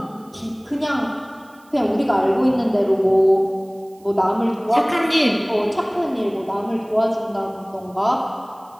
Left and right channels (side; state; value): right; noise; hiss, 30 dB below the sound